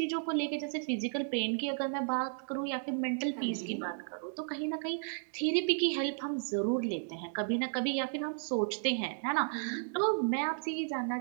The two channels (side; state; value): left; silent; digital silence